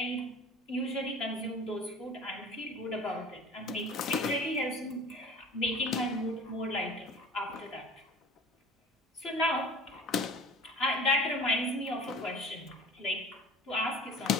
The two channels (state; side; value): normal; both; correlation 0.42